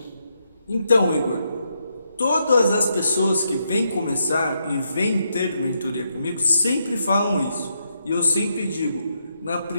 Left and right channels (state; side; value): inverted; both; correlation -0.80